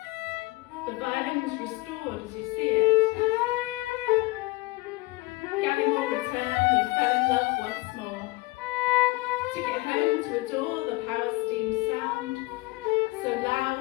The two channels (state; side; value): quieter; right; 22.0 dB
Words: The violin was restored as you see it. Gallimore returned and fell in love once more. Took it home to adore the power steam sound, so loud